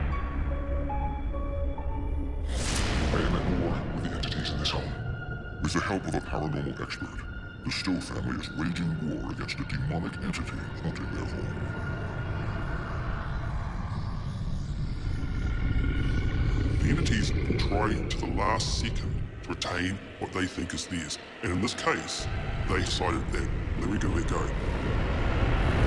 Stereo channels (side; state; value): both; identical; correlation 1.00